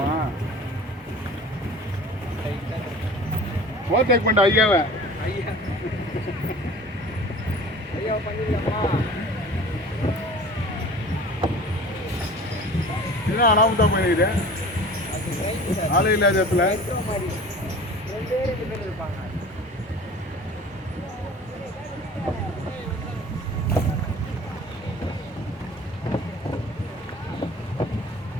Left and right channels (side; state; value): both; normal; correlation 0.42